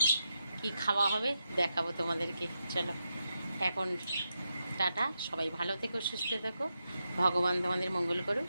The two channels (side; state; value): both; inverted; correlation -0.86